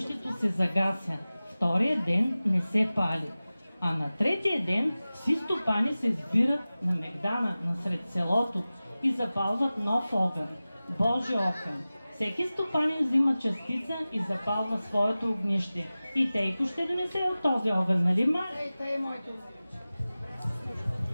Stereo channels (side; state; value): both; inverted; correlation -0.97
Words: се загася. втория ден не се пали. А на третия ден всички стопани се сбират на Мегдана, насред селото и запалват нов огън, Божи огън. Всеки стопанин взима частица и запалва своето огнище. И Тейко ще донесе от този огън, нали ма?